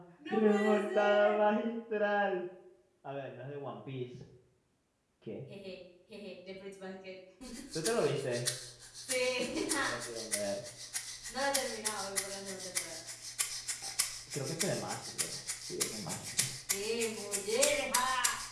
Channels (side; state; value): both; identical; correlation 1.00